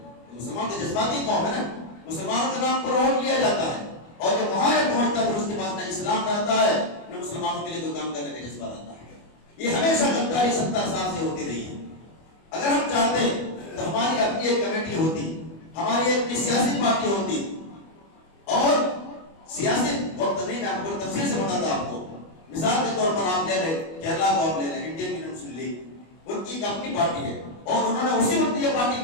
مسلمان تو جذباتی قوم ہے نا, مسلمانوں کے نام پر ووٹ لیا جاتا ہے, اور جب وہاں پہنچتا ہے پھر اس کے پاس نہ اسلام رہتا ہے نہ مسلمانوں کے لیے کوئی کام کرنے کا جذبہ رہتا ہے. یہ ہمیشہ غداری 70 سال سے ہوتی رہی ہے. اگر ہم چاہتے تو ہماری اپنی ایک کمیٹی ہوتی, ہماری ایک سیاسی پارٹی ہوتی, اور سیاسی وقت نہیں, میں آپ کو تفصیل سے بتاتا آپ کو. مثال کے طور پر آپ لے لیں کیرلا کو, آپ لے لیں انڈین یونین مسلم لیگ, ان کی ایک اپنی پارٹی ہے, اور انہوں نے اسی وقت یہ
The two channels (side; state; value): right; late; 25 ms